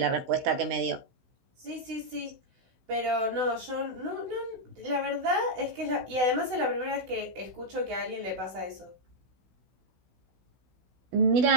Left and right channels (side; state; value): left; late; 16 ms